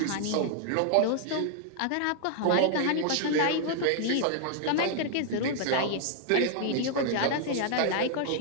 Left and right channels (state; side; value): different; both; correlation 0.00